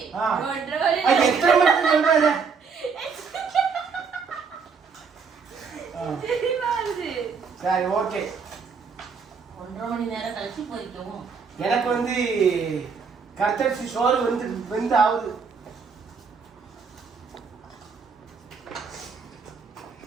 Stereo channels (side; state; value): left; quieter; 5.5 dB